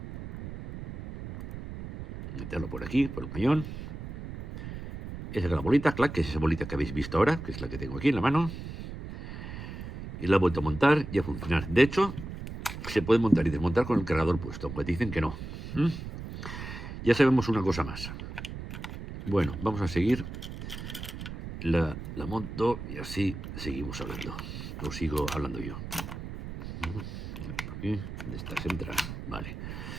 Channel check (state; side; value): noise; right; rumble, 9 dB below the sound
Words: Meterlo por aquí, por el cañón. Esa es la bolita, clac, que es esa bolita que habéis visto ahora, que es la que tengo aquí en la mano. Y la he vuelto a montar y a funcionar. De hecho, se puede montar y desmontar con el cargador puesto, aunque dicen que no. Ya sabemos una cosa más. Bueno, vamos a seguir. La monto y así seguimos hablando. O sigo hablando yo. Aquí, de estas entra. Vale.